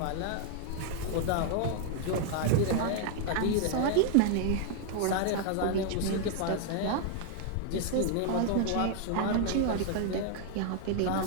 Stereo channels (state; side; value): different; both; correlation 0.00